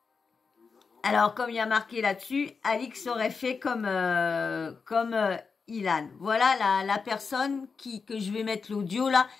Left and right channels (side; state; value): right; quieter; 5.1 dB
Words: Alors, comme il y a marqué là-dessus, Alix aurait fait comme Ilan. Voilà la personne que je vais mettre l'audio là,